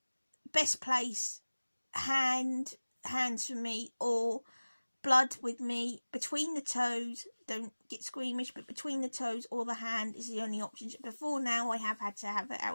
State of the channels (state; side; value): inverted; both; correlation -1.00